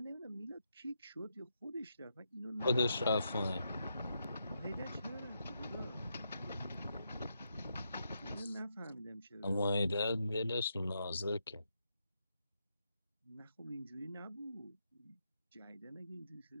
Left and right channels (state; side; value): inverted; both; correlation -0.82